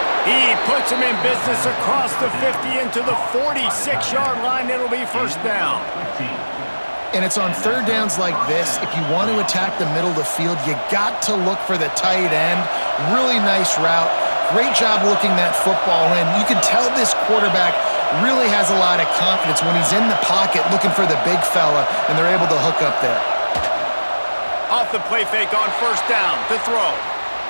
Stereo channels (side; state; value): both; inverted; correlation -1.00